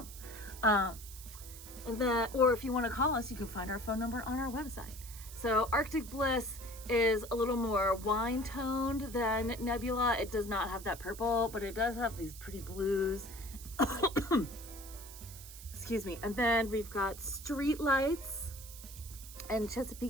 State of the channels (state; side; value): noise; right; hiss, 15 dB below the sound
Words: Or if you want to call us, you can find our phone number on our website. So Arctic Bliss is a little more wine toned than Nebula. It does not have that purple, but it does have these pretty blues. Excuse me. And then we've got Street Lights and